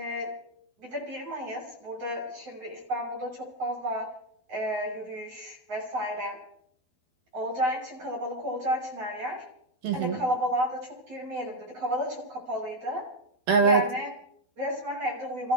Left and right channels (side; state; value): left; late; 12 ms